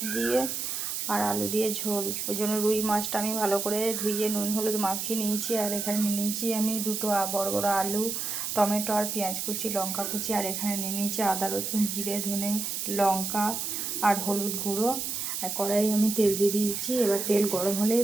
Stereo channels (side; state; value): right; noise; hiss, 3 dB below the sound